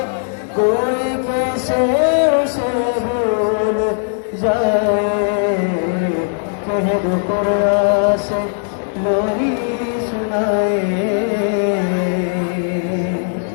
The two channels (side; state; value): right; silent; digital silence